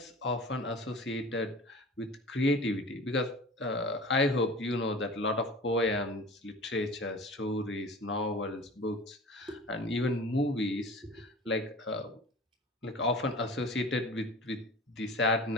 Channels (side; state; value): both; normal; correlation 0.39